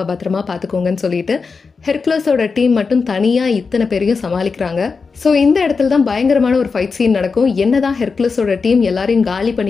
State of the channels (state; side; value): quieter; right; 4.9 dB